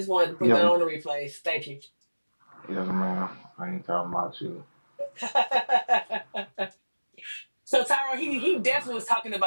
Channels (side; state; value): both; inverted; correlation -1.00